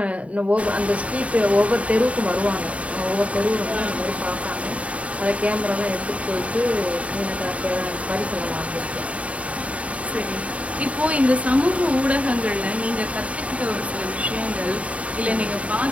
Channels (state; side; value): late; left; 0.065 ms